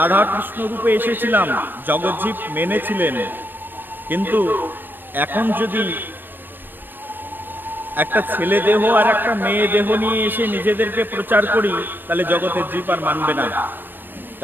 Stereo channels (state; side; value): late; left; 0.094 ms